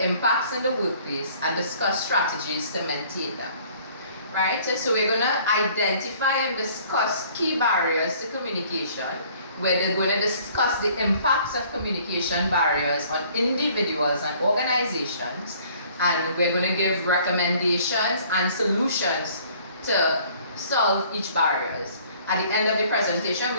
impacts in the workplace and discuss strategies to maintain them. Right? So we're going to identify and discuss key barriers to communication. We're going to discuss the impacts of communication barriers on individuals and organizations, and we're going to give recommendations and solutions to solve each barriers. At the end of the presentation,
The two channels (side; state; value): both; inverted; correlation -0.56